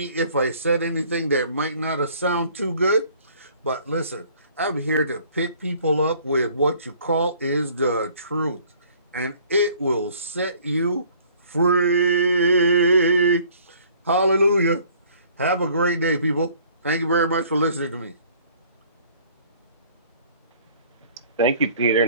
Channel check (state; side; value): inverted; both; correlation -0.56